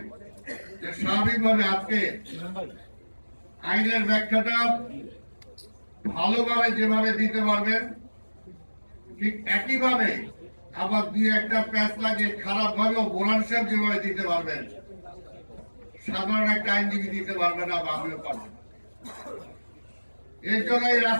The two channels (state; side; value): inverted; both; correlation -1.00